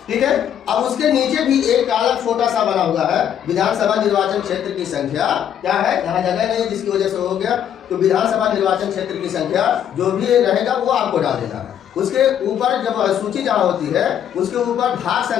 ठीक है, अब उसके नीचे भी एक कॉलम छोटा सा बना हुआ है, विधानसभा निर्वाचन क्षेत्र की संख्या क्या है? यहाँ जगह नहीं, जिसकी वजह से हो गया, तो विधानसभा निर्वाचन क्षेत्र की संख्या जो भी रहेगा वो आपको डाल देना है। उसके ऊपर जब सूची जहाँ होती है, उसके ऊपर भाग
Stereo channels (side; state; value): right; quieter; 9.6 dB